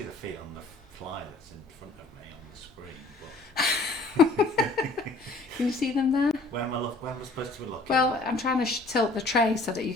the feet on the fly that's in front of me on the screen. But Can you see them there? where am I supposed to be looking? Well, I'm trying to tilt the tray so that you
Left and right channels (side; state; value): right; quieter; 3.3 dB